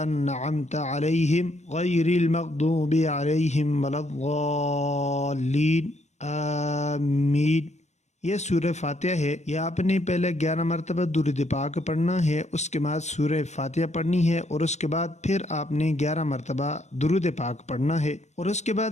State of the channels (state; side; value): late; right; 0.33 ms